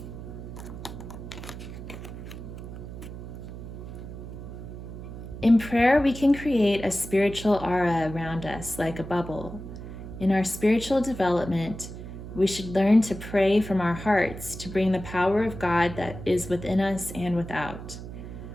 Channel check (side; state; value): right; noise; hum, 11 dB below the sound